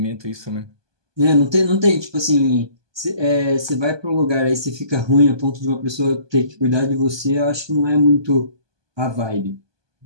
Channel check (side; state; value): left; late; 1.2 ms